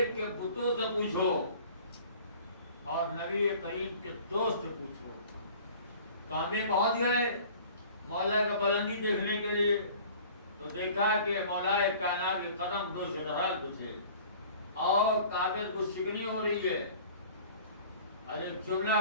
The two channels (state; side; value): inverted; both; correlation -0.47